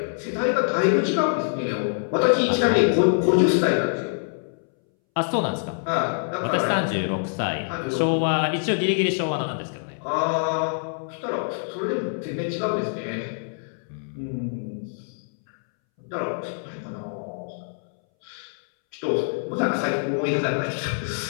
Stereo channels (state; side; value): silent; right; 62 dB below the other